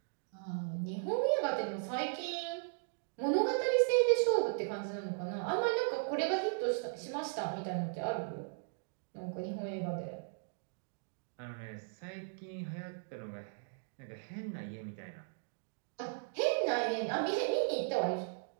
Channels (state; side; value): silent; left; digital silence